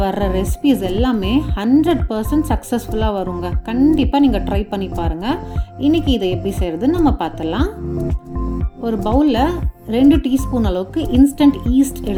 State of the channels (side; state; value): both; identical; correlation 1.00